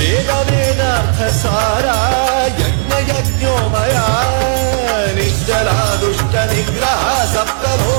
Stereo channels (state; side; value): silent; left; digital silence